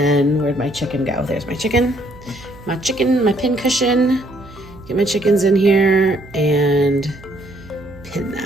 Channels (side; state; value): right; noise; hum, 21 dB below the sound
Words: where'd my chicken go? There's my chicken. My pin cushion. Get my chickens in here and pin